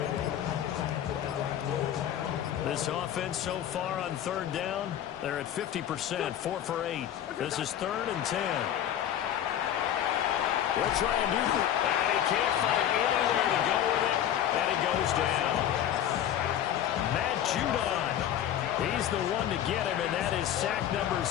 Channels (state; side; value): quieter; right; 10.7 dB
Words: This offense so far on 3rd down, they're at 50%, 4 for 8. This is 3rd and 10. They'll try and do that. And he can't find anywhere to go with it, and it goes down. Matt Judon, he's the one to get him, and that is sack number